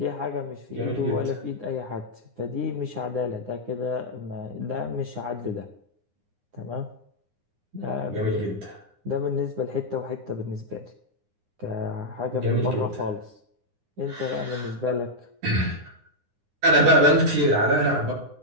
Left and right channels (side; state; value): left; late; 9.7 ms